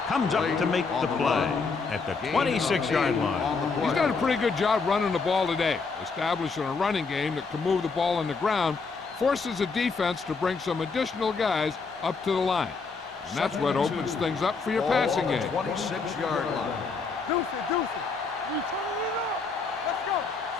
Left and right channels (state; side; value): quieter; right; 4.6 dB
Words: comes up to make the play at the 26-yard line. He's done a pretty good job running the ball today, establishing a running game that can move the ball on the ground, forces the defense to bring some additional guys up to the line. And that's what opens things up for your passing game. 26-yard line. Deuce it. We turning it up. Let's go.